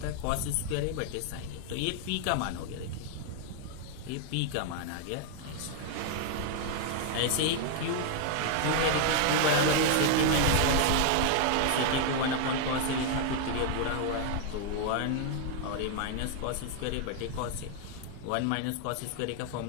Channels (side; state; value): both; different; correlation 0.00